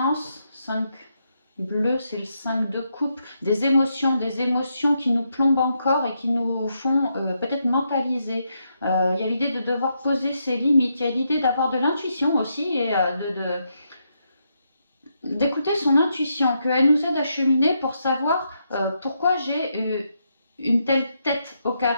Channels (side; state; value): both; inverted; correlation -0.80